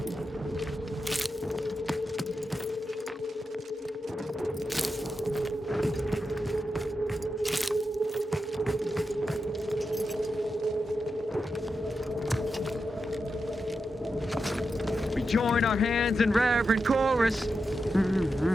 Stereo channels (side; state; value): both; normal; correlation 0.88